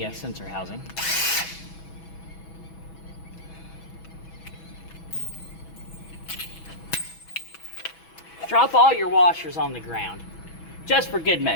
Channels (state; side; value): late; right; 6.1 ms